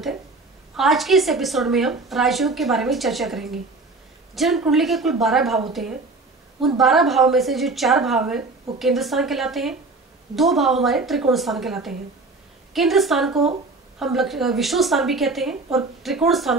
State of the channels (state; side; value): quieter; left; 3.5 dB